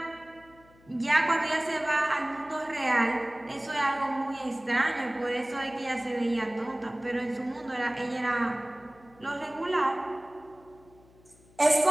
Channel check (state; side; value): noise; left; hum, 27 dB below the sound